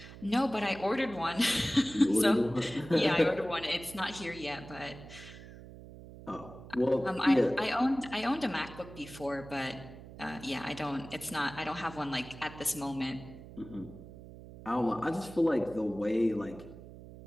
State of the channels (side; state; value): right; noise; hum, 16 dB below the sound